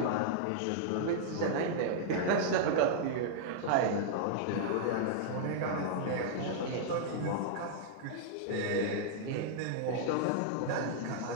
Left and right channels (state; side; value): different; both; correlation -0.01